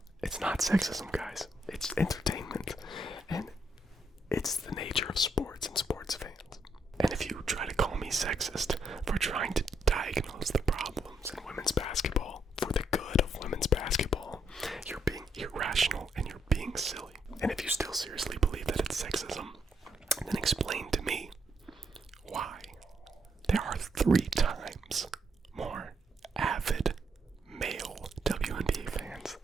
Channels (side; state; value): both; normal; correlation 0.76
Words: It's not sexism, guys. It's entertainment, and it's the nature of sports and sports fans. And if you try to call me sexist for trying to diagnose the problems in women's basketball for the good of women's basketball, you're being irrational and you're being silly. And if you still seriously believe that it's sexism, then explain to me why there are 3 times more avid male WNBA fans